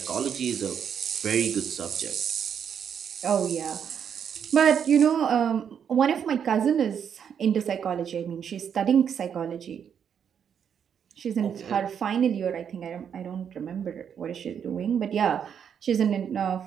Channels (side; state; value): left; quieter; 7.9 dB